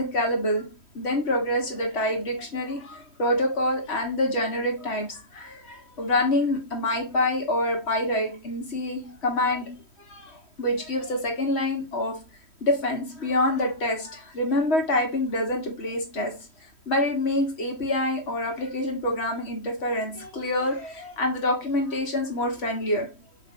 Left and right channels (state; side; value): late; right; 3.1 ms